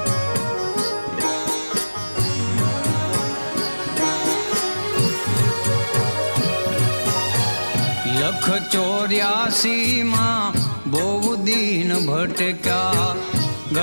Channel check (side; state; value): both; inverted; correlation -1.00